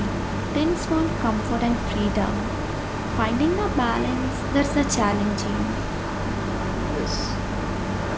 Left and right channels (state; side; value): identical; both; correlation 1.00